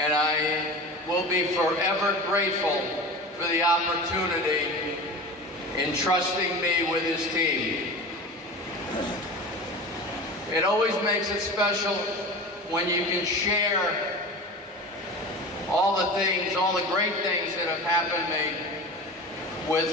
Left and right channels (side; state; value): both; normal; correlation 0.32